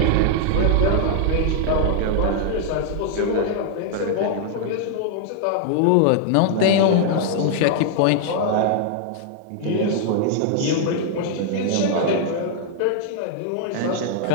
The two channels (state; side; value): different; both; correlation -0.01